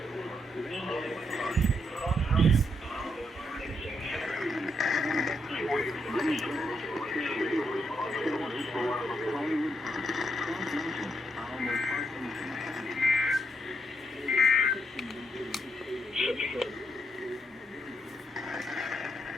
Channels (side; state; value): both; normal; correlation 0.78